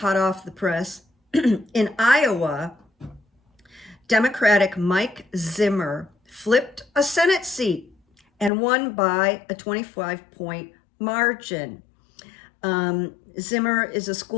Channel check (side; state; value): right; drops out; at 8.5 s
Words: off the press. In Iowa, Democratic Mike Zimmer flipped a Senate seat and won by a 25-point margin. Zimmer is a